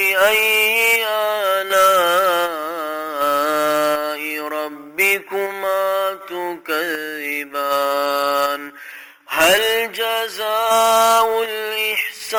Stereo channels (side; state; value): both; identical; correlation 1.00